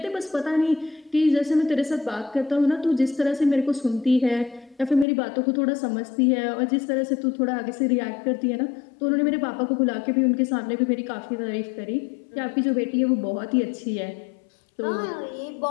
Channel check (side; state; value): right; drops out; at 5.1 s